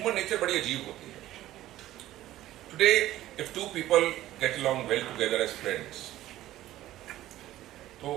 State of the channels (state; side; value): quieter; left; 14.5 dB